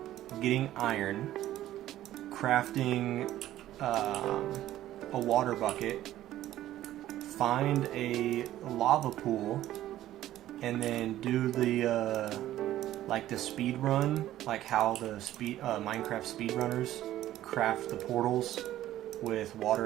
getting iron, crafting a water bucket, find a lava pool, and then do the like the speed run, like how the Minecraft speedrunners craft the portals with water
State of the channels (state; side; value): quieter; left; 13.6 dB